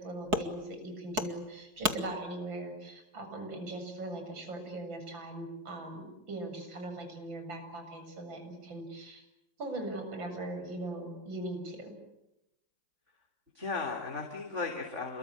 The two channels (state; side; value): late; left; 4.7 ms